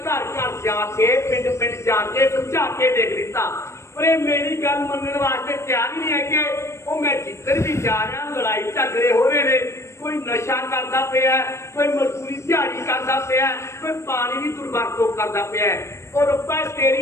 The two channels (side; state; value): right; late; 0.13 ms